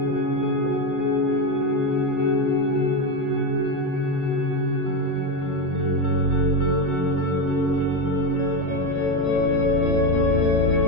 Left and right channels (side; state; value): right; late; 1.4 ms